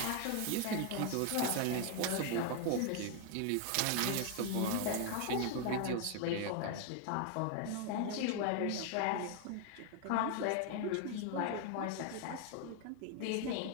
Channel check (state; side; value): different; both; correlation 0.01